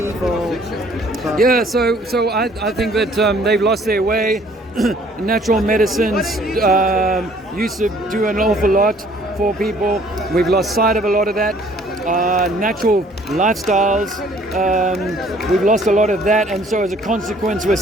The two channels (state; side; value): normal; both; correlation 0.58